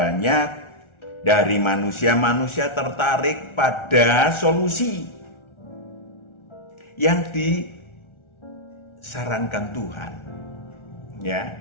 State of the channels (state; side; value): late; right; 1.4 ms